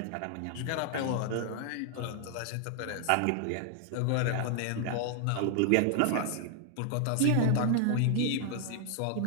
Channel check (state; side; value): different; both; correlation 0.00